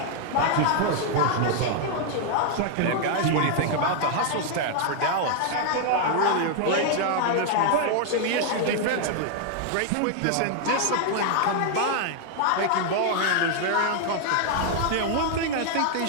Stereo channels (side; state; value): both; different; correlation 0.00